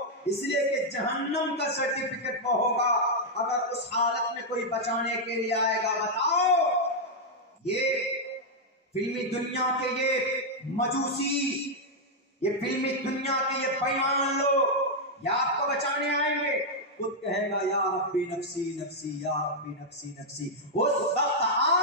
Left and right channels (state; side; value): normal; both; correlation -0.03